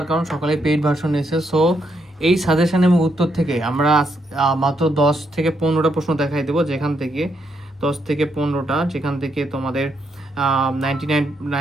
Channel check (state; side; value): normal; both; correlation 0.78